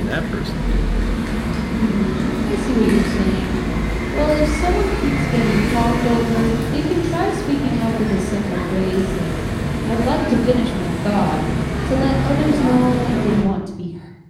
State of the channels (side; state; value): both; identical; correlation 1.00